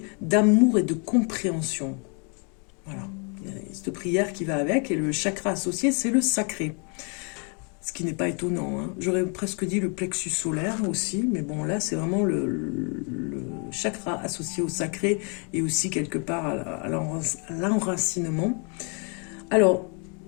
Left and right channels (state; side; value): quieter; right; 36.8 dB